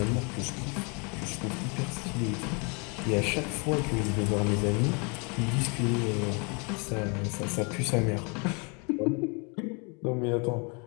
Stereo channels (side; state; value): right; quieter; 33.2 dB